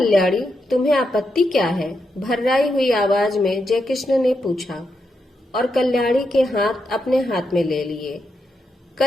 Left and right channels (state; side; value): normal; both; correlation 0.84